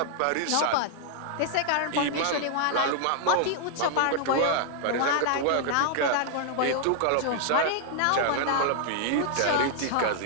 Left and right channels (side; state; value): both; different; correlation 0.00